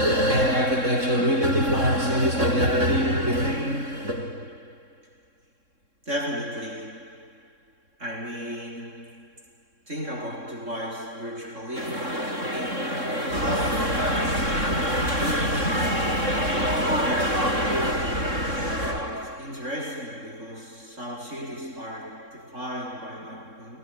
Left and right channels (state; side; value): late; left; 3.6 ms